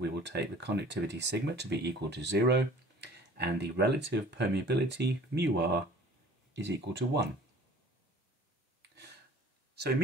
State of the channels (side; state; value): both; normal; correlation 0.48